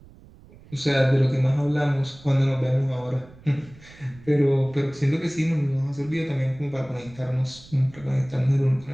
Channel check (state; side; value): noise; right; rumble, 23 dB below the sound